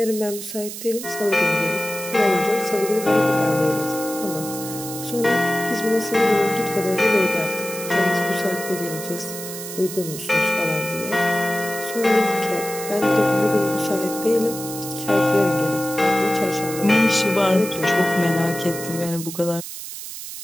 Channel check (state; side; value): noise; right; hiss, 9 dB below the sound